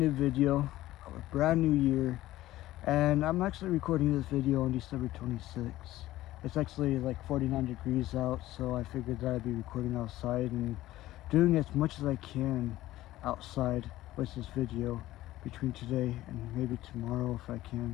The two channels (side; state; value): right; quieter; 15.8 dB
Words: new video of a brand new year, and I'm actually recording this video on December 26th. It's actually like 49 degrees out, so I figured that I'd be recording outside and doing as much as I can outside with this video between today and maybe tomorrow if I